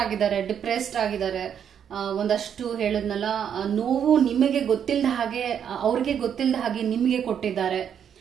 ಆಗಿದ್ದಾರೆ, ಡಿಪ್ರೆಸ್ಡ್ ಆಗಿದ್ದಾರೆ. ಒಂದಷ್ಟು ಹೇಳಿದ್ನಲ್ಲ, ನೋವು ನಿಮಗೆ ಗೊತ್ತಿಲ್ಲದ ಹಾಗೆ ಅವ್ರಿಗೆ ಗೊತ್ತಿಲ್ಲದ ಹಾಗೆ ನಿಮಗೆ ಕೊಟ್ಟಿದ್ದಾರೆ.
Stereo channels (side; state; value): left; quieter; 8.4 dB